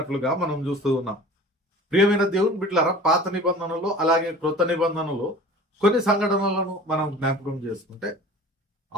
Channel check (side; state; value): both; normal; correlation 0.42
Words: మనం చూస్తూ ఉన్నాం. ప్రియమైన దేవుని బిడ్డలారా, పాత నిబంధనలో అలాగే క్రొత్త నిబంధనలో కొన్ని సంఘటనలను మనం జ్ఞాపకం చేసుకుంటే,